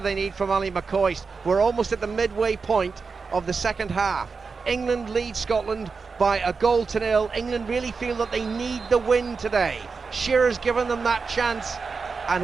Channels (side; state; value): left; quieter; 4.9 dB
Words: need from Ali McCoist? We're almost at the midway point of the second half. England leads Scotland by 1-0. England really feel that they need the win today. Shearer's given them that chance, and